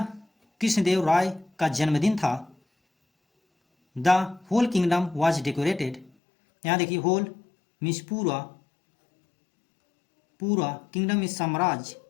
कृष्णदेव राय का जन्मदिन था। The whole kingdom was decorated, यहाँ देखिए होल मीन्स पूरा, पूरा, किंगडम मीन्स साम्राज्य,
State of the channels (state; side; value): drops out; right; at 6.1 s